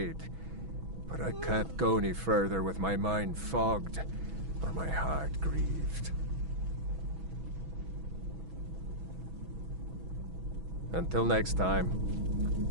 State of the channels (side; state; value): left; late; 6.1 ms